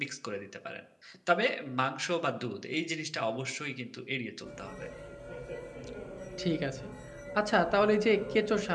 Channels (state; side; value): identical; both; correlation 1.00